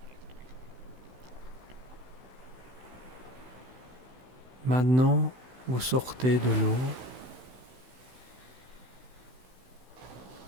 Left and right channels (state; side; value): late; left; 16 ms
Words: Maintenant, vous sortez de l'eau